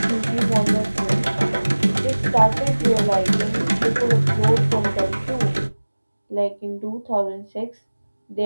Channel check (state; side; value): inverted; both; correlation -1.00